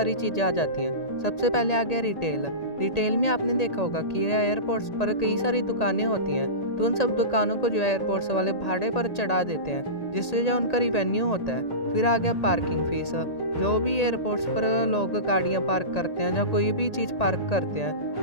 चीज़ें आ जाती हैं। सबसे पहले आ गया रिटेल। रिटेल में आपने देखा होगा कि एयरपोर्ट्स पर कई सारी दुकानें होती हैं, तो उन सब दुकानों को जो एयरपोर्ट्स वाले भाड़े पर चढ़ा देते हैं, जिससे जो उनका रिवेन्यू होता है। फिर आ गया पार्किंग फीस। जो भी एयरपोर्ट्स पर लोग गाड़ियां पार्क करते हैं या कोई भी चीज़ पार्क करते हैं,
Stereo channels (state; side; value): late; right; 1.8 ms